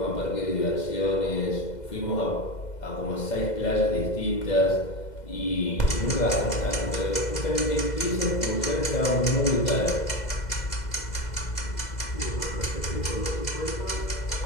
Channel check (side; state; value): right; late; 2.0 ms